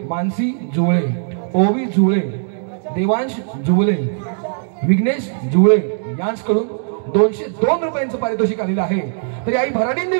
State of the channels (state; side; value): silent; left; digital silence